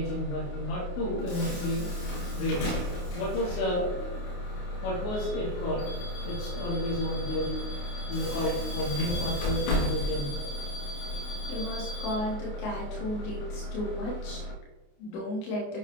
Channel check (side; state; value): right; late; 28 ms